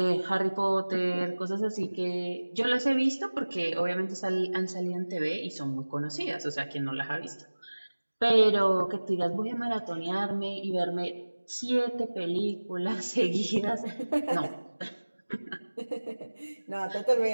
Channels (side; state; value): both; inverted; correlation -1.00